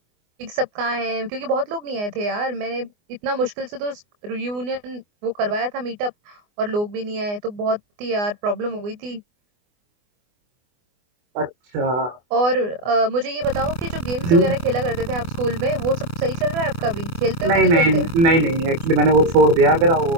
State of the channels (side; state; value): left; late; 24 ms